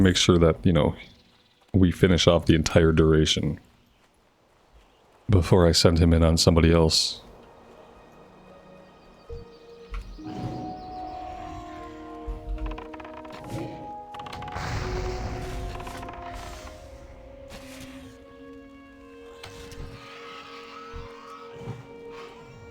sure that, you know, we finish off the entire duration before I send him in on somebody else.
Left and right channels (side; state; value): both; identical; correlation 1.00